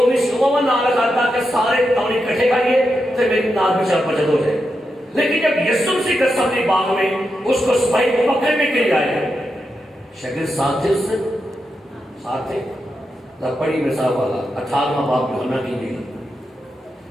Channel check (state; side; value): normal; both; correlation 0.86